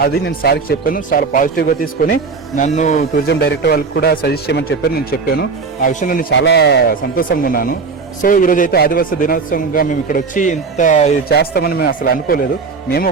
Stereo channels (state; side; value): quieter; left; 4.8 dB